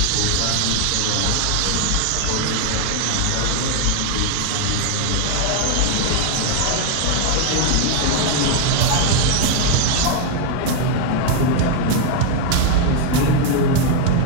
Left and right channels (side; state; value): both; different; correlation 0.00